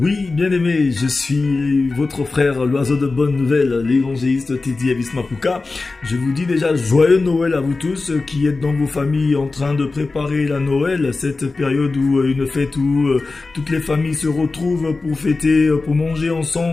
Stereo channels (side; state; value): right; quieter; 3.7 dB